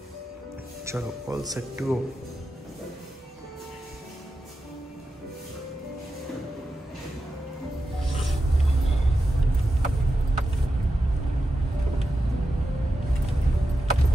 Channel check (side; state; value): both; normal; correlation 0.90